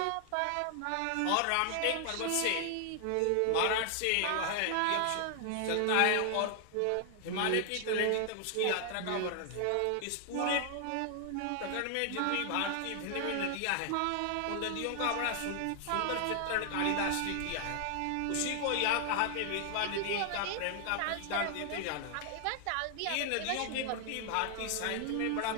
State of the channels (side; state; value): both; different; correlation 0.00